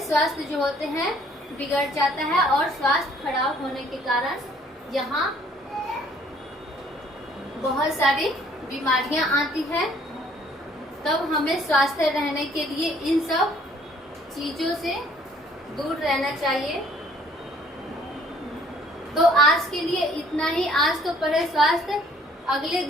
स्वास्थ्य जो होते हैं बिगड़ जाता है और स्वास्थ्य खराब होने के कारण यहाँ बहुत सारी बीमारियां आती है। तब हमें स्वस्थ रहने के लिए इन सब चीजों से दूर रहना चाहिए। तो आज के लिए इतना ही। आज तो पढ़े स्वास्थ्य, अगले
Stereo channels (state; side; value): normal; both; correlation 0.60